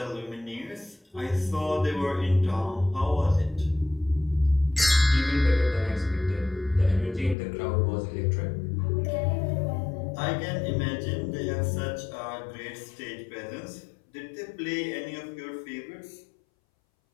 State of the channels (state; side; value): drops out; right; at 7.4 s